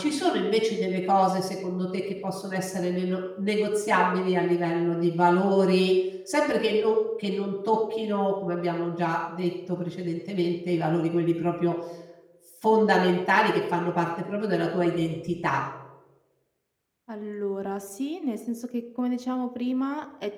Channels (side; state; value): both; identical; correlation 1.00